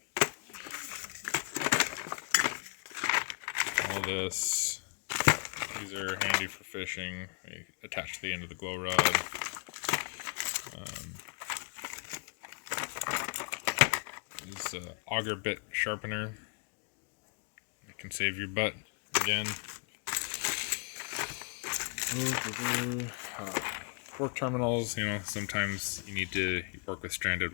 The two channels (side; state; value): right; quieter; 35.5 dB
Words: All this. These are handy for fishing. They attach to the end of the glow rod. This auger bit sharpener. It can save your butt again. Fork terminals, you know, sometimes you need to work with stranded